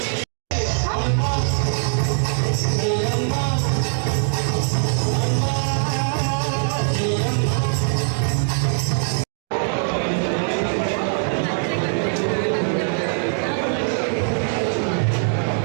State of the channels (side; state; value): left; silent; digital silence